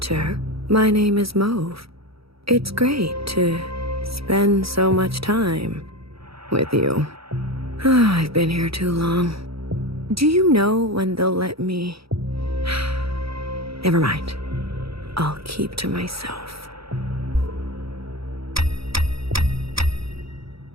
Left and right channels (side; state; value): left; late; 0.76 ms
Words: my name is Mauve. It's great to spend so much time with you. I've been here too long. Do you know when they'll let me? Never mind. I'll keep to myself.